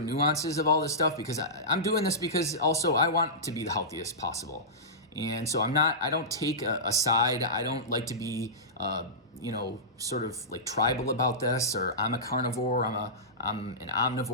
nuances of all this stuff, because I'm doing this because also I want to be the healthiest possible. And so I don't take a side. I don't like to be, sort of like tribal about this, or I'm a carnivore, I'm an omnivore,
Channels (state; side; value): normal; both; correlation -0.18